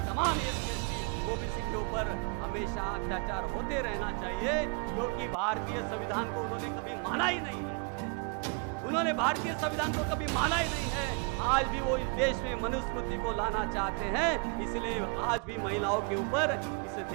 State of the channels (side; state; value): left; quieter; 35.1 dB